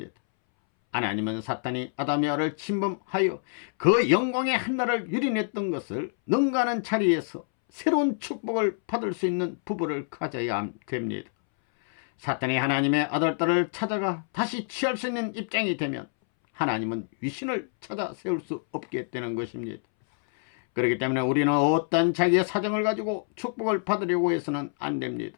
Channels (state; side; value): silent; right; 60 dB below the other